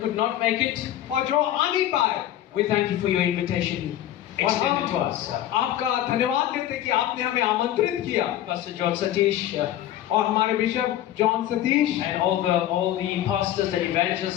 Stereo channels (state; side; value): quieter; right; 12.5 dB